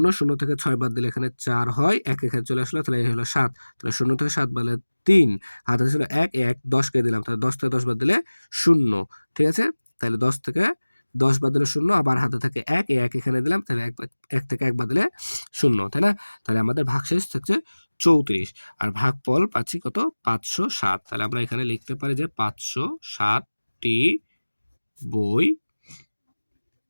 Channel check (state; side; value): inverted; both; correlation -1.00